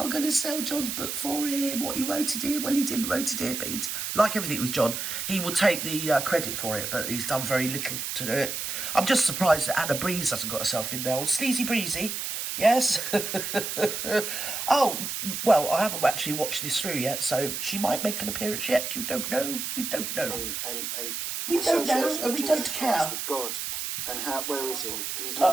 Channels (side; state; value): right; noise; hiss, 4 dB below the sound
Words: going to sell John's book for him. What he wrote it in. Well, he didn't wrote it in, but it's like everything with John. He will take the credit for it, but he's done very little to do it. I'm just surprised that Anna Breeze hasn't got herself in there. Old Sleazy Breezy. Yes. Oh, well, I haven't actually watched this through yet, so she might make an appearance yet. You don't know. We don't know. And we don't know, and we don't care. With God, and where is he? He's